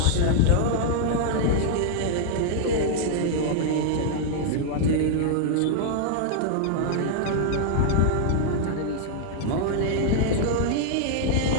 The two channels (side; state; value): both; different; correlation -0.01